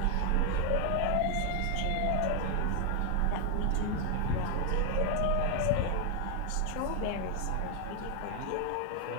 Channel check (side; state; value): both; different; correlation 0.00